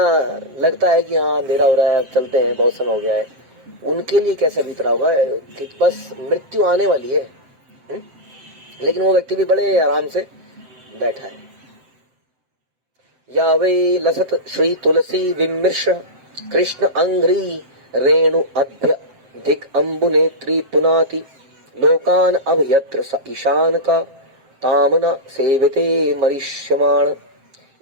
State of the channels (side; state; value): left; late; 7.7 ms